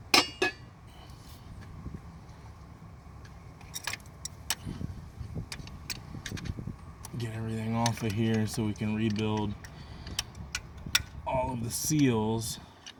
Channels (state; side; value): identical; both; correlation 1.00